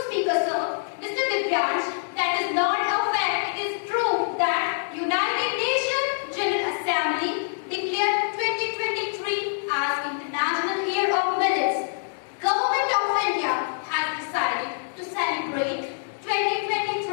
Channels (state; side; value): silent; right; digital silence